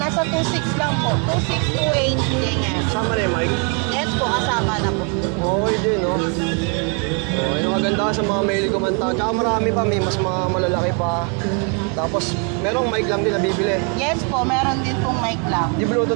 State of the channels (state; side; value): quieter; left; 38.0 dB